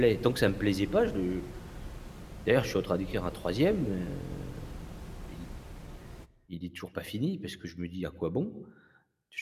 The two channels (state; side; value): identical; both; correlation 1.00